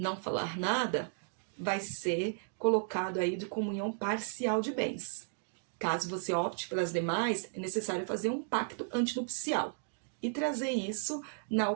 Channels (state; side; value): silent; left; digital silence